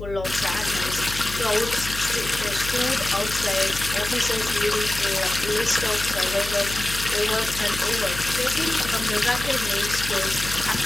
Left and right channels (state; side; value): noise; left; hum, 10 dB below the sound